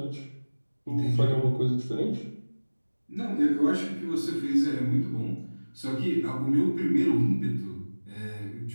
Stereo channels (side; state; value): both; inverted; correlation -1.00